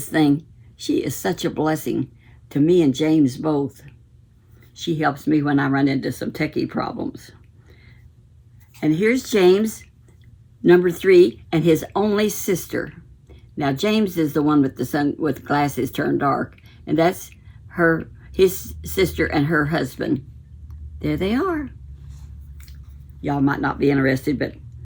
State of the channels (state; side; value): identical; both; correlation 1.00